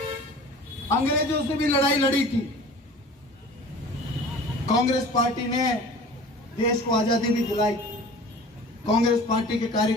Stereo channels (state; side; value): normal; both; correlation 0.42